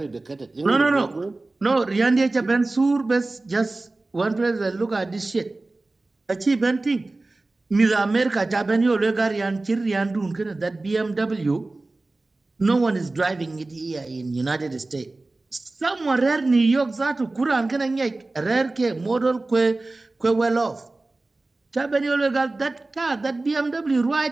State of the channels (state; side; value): quieter; left; 3.1 dB